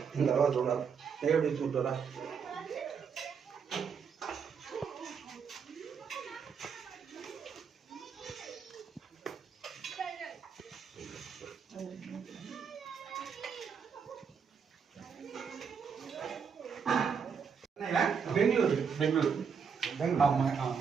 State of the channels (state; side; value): quieter; left; 6.4 dB